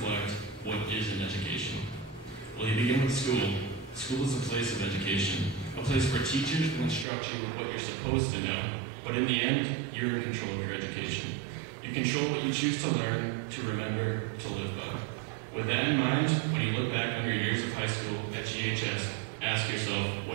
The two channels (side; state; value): left; drops out; at 7.1 s